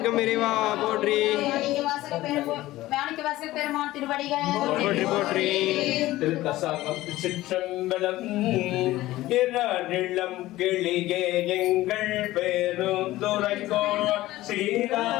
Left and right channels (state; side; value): quieter; right; 16.7 dB